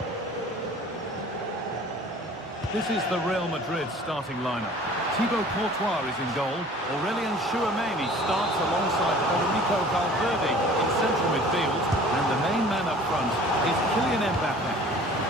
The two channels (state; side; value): normal; both; correlation 0.48